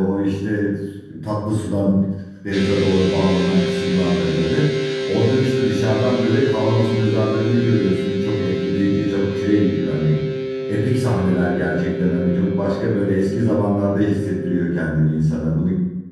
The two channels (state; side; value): identical; both; correlation 1.00